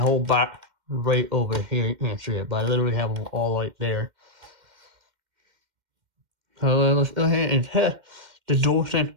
box right over here. You can't see it, but I literally have them all right there. So let's go ahead and test the DualSense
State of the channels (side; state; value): left; late; 2.1 ms